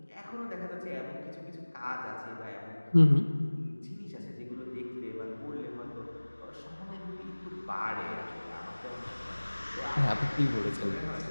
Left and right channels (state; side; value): inverted; both; correlation -1.00